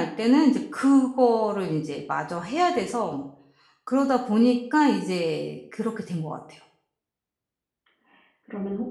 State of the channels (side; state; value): both; identical; correlation 1.00